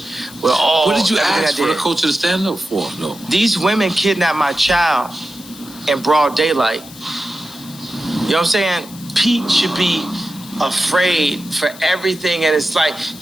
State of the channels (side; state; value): left; noise; hiss, 18 dB below the sound